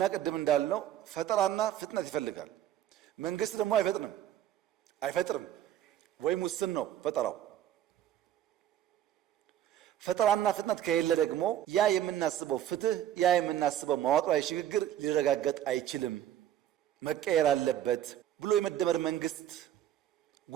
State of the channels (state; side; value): quieter; left; 11.4 dB